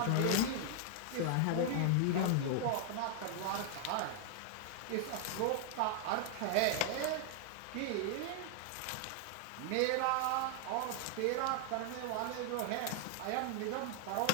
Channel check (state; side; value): different; both; correlation 0.00